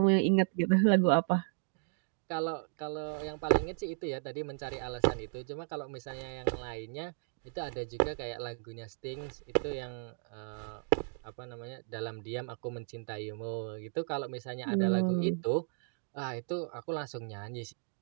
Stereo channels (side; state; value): left; silent; 55 dB below the other